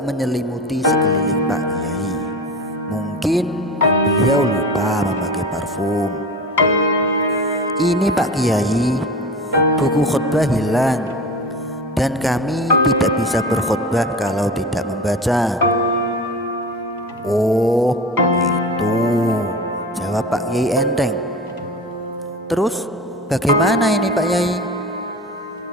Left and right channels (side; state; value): both; normal; correlation 0.31